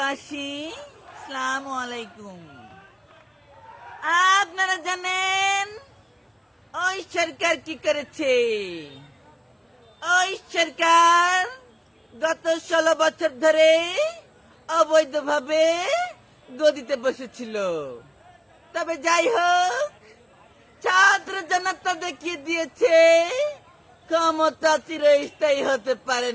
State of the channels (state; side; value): identical; both; correlation 1.00